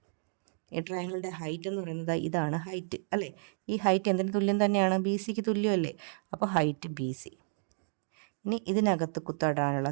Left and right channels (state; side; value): silent; left; digital silence